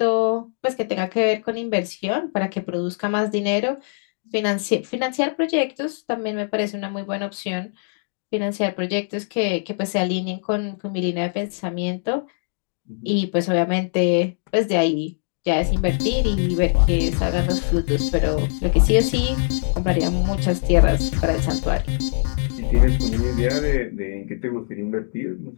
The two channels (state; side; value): silent; right; digital silence